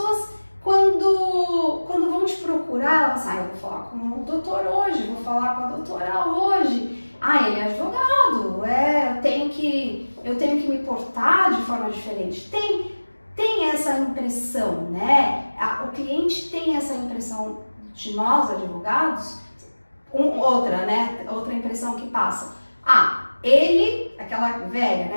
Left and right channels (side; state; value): both; inverted; correlation -1.00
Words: quando vão te procurar, elas falam, eu vou falar com o doutor hoje, vou falar com a doutora hoje. Ele é advogado, eu tenho que me portar de forma diferente. Tem essa impressão, né? O cliente tem essa impressão de nós, advogados. Outra impressão que passa. Ele, aquela velha,